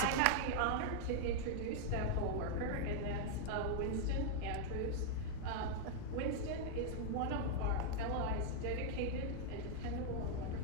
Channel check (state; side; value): different; both; correlation -0.01